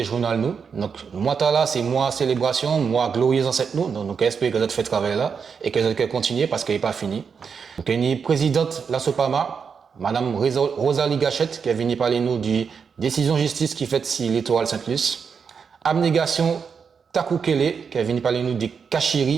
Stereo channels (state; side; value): quieter; left; 6.2 dB